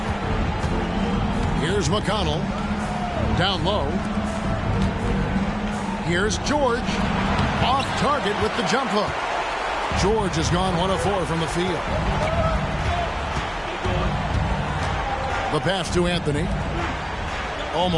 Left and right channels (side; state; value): both; identical; correlation 1.00